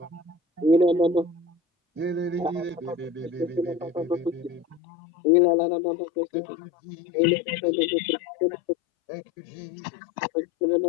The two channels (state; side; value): drops out; right; at 4.8 s